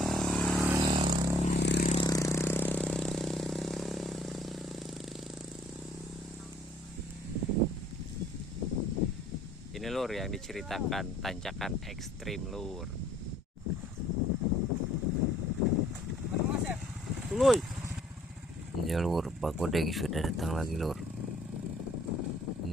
Ini lur yang diceritakan tanjakan ekstrim lur. Tuluy. Ya lur, Pak Godeng sudah datang lagi lur.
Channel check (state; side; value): normal; both; correlation 0.59